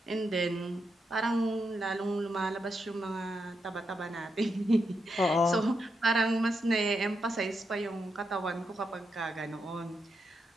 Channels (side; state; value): both; normal; correlation 0.83